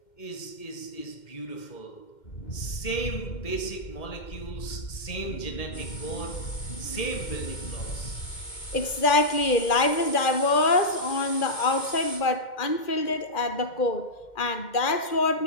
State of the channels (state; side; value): late; right; 2.1 ms